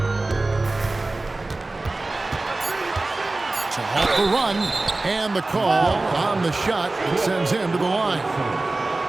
To halt the run. And the call on the shot that sends him to the line.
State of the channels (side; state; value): left; quieter; 3.1 dB